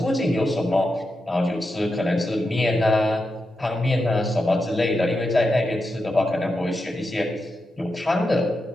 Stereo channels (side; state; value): both; normal; correlation 0.87